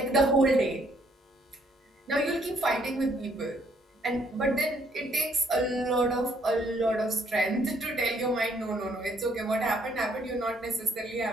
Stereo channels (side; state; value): both; normal; correlation 0.67